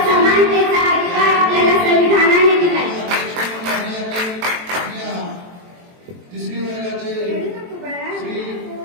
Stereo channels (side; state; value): left; late; 23 ms